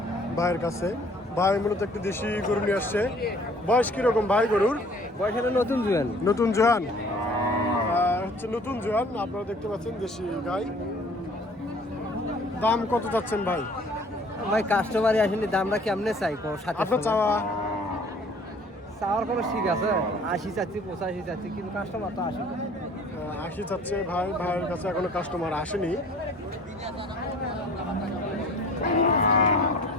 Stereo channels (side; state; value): both; normal; correlation 0.52